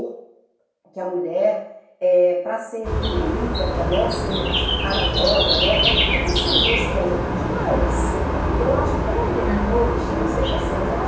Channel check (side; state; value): both; identical; correlation 1.00